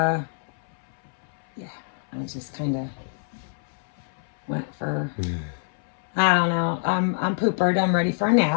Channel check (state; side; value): silent; right; 61 dB below the other